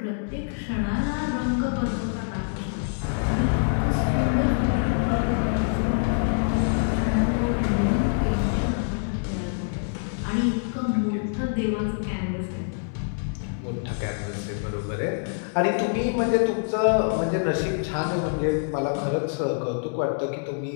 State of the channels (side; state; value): right; silent; digital silence